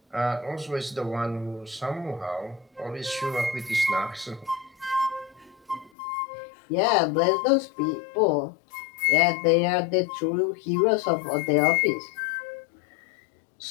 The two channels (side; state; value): right; drops out; at 5.9 s